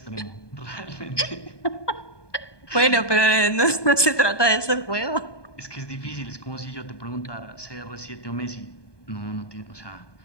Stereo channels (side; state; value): right; late; 1.2 ms